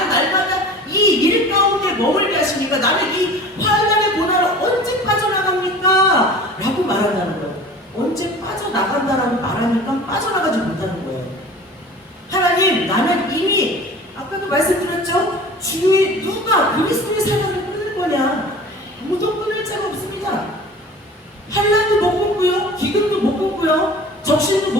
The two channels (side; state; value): both; normal; correlation 0.41